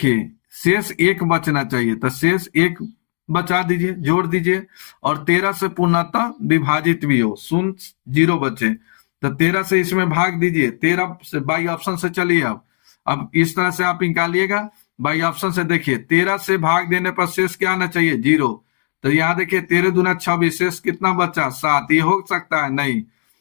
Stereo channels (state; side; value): silent; right; 67 dB below the other